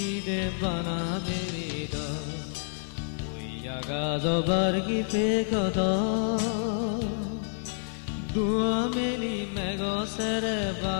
বানা বেৰিদ ওই আগাজ বাৰ্গীতে গদ দুয়া মেলি মেঘছেৰে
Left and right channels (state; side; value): silent; right; 59 dB below the other